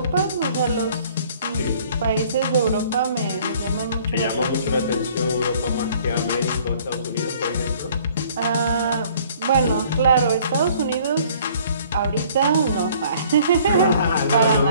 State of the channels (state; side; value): inverted; both; correlation -0.56